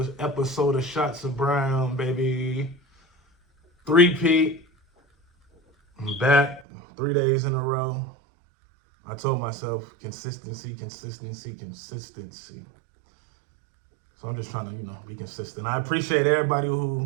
episode of Shots of Brown, baby. Three-peat. I'm back 3 days in a row. I told myself consistency. So I'm just trying to, be consistent. I appreciate everybody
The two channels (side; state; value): left; drops out; at 6.7 s